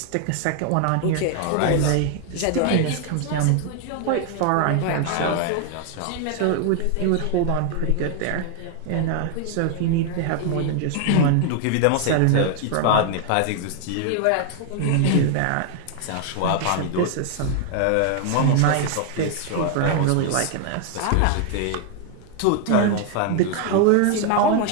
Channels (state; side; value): different; both; correlation 0.00